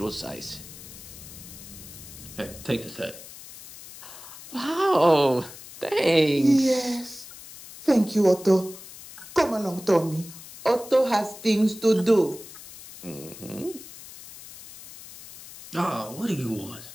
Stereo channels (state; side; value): noise; left; hiss, 16 dB below the sound